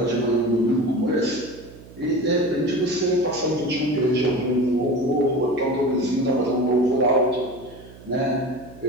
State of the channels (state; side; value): noise; right; hum, 20 dB below the sound